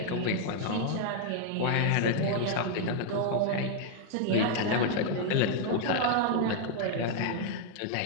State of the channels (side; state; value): both; different; correlation 0.00